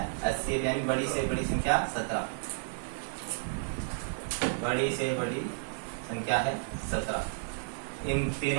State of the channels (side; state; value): left; silent; 56 dB below the other